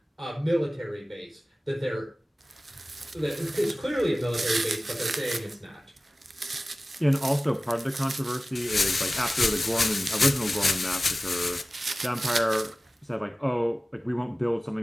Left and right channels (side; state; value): both; normal; correlation 0.97